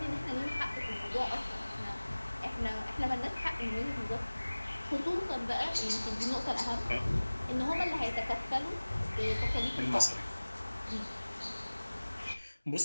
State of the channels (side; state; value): both; inverted; correlation -1.00